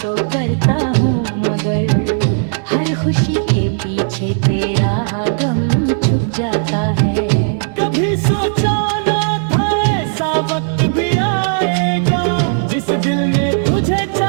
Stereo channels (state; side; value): silent; left; digital silence